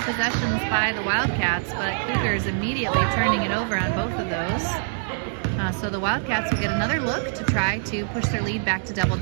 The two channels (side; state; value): left; silent; digital silence